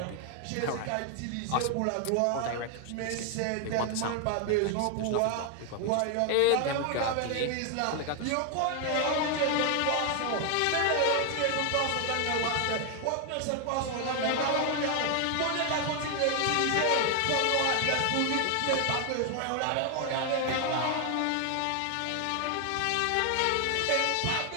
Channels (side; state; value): both; different; correlation 0.00